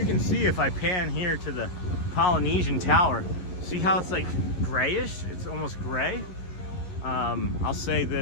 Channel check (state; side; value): late; right; 11 ms